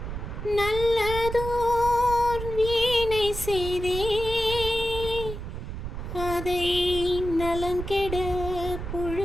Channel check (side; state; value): right; noise; rumble, 7 dB below the sound